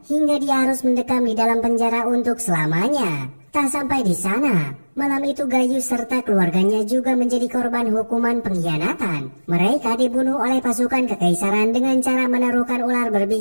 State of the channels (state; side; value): inverted; both; correlation -1.00